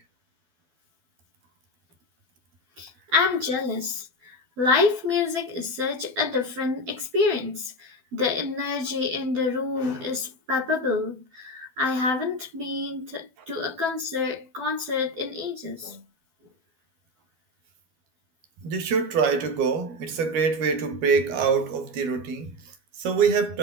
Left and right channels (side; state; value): left; late; 12 ms